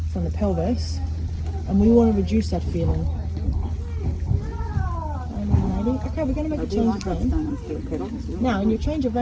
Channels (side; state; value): both; identical; correlation 1.00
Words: from the pelvis, and we want to reduce that feeling. Okay, we're going to make a change of rein. Now, in your change of